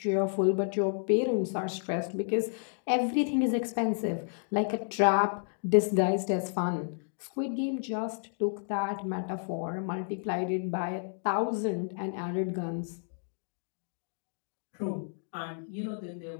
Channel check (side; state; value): right; silent; digital silence